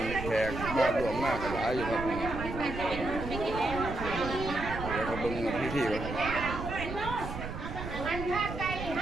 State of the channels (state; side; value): noise; right; rumble, 7 dB below the sound